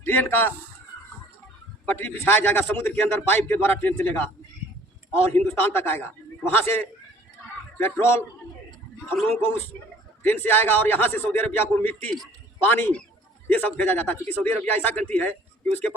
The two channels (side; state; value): both; normal; correlation 0.54